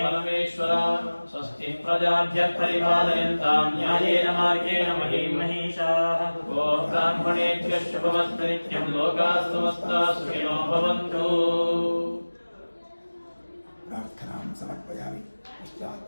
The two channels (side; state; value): both; inverted; correlation -1.00